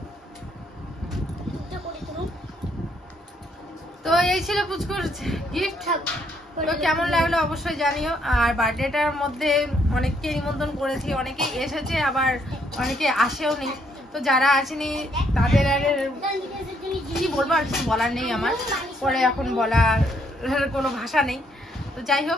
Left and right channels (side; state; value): both; normal; correlation 0.71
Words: তো এই ছিল পুচকুর গিফট। তো কেমন লাগলো অবশ্যই জানিও। আর বার্থডেটার মধ্যে অনেককে নিমন্ত্রণ করেছি, অনেকেই এসেছে, আবার অনেকে আসেও নি। তো যারা আসেনি তাদের আর কি বলবো, আর কিছু বলার নেই আমার, পরে এখন বলার কোনো ভাষা নেই। তো যাই